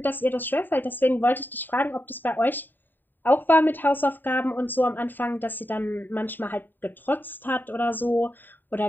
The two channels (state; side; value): late; right; 0.091 ms